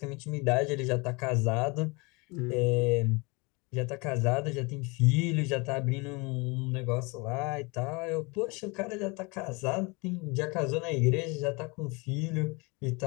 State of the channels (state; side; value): quieter; right; 27.9 dB